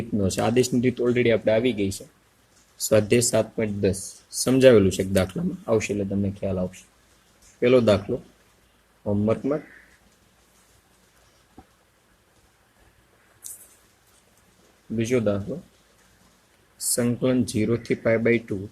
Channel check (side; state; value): both; identical; correlation 1.00